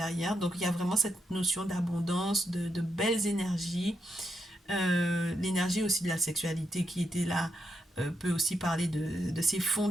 Donc il y a vraiment cette notion d'abondance, de belles énergies, l'énergie aussi de la sexualité qui était là. Peut aussi parler de ses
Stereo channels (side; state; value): both; normal; correlation 0.82